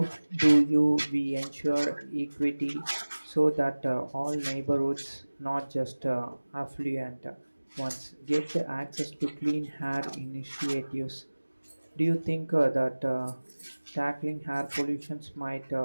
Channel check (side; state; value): both; inverted; correlation -1.00